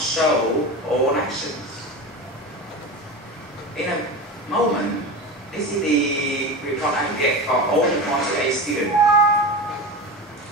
all actions. In a moment, this is the report I get for all the 48 students.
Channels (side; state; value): both; normal; correlation 0.26